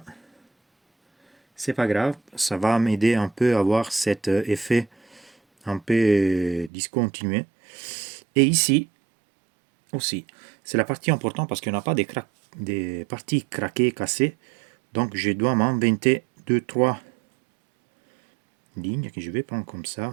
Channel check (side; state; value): left; drops out; at 6.7 s